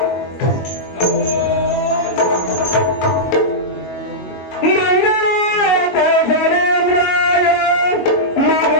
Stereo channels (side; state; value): right; late; 22 ms